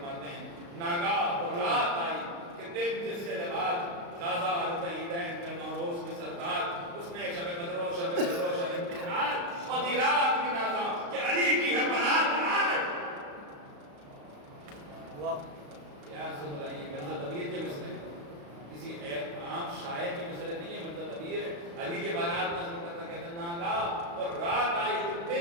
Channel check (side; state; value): left; late; 35 ms